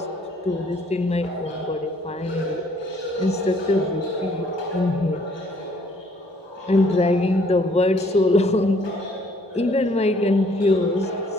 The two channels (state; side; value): normal; both; correlation 0.62